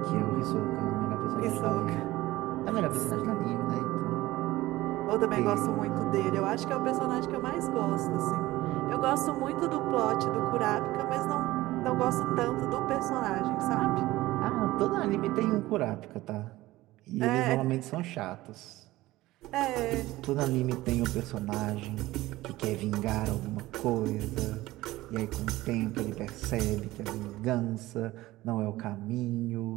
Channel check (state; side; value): quieter; left; 17.6 dB